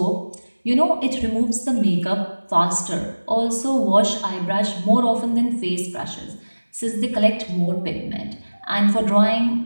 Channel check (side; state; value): both; inverted; correlation -1.00